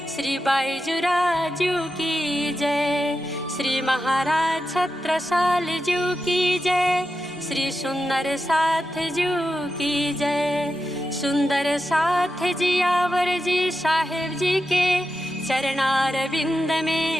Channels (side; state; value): both; normal; correlation 0.90